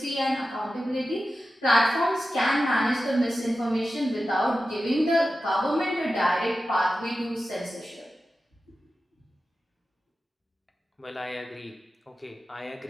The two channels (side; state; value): both; normal; correlation 0.93